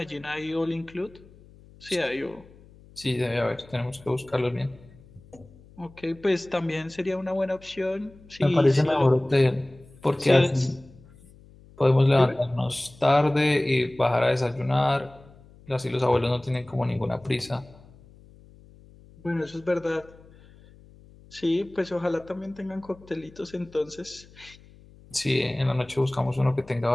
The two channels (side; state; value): left; noise; hum, 24 dB below the sound